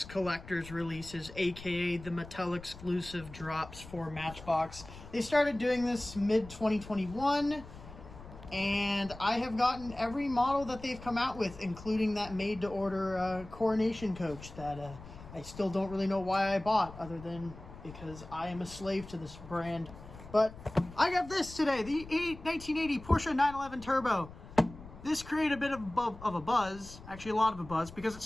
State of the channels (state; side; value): noise; left; rumble, 16 dB below the sound